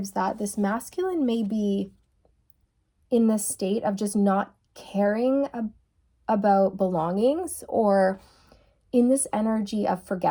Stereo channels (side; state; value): both; identical; correlation 1.00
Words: that this masculine may be in this state of just not caring about belongings, or in this energy of